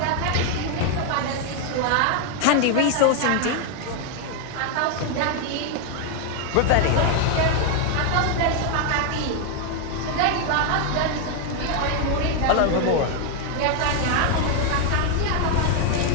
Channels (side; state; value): both; different; correlation 0.01